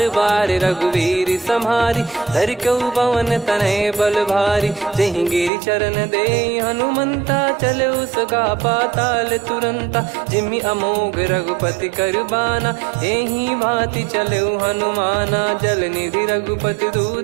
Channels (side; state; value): left; drops out; at 5.5 s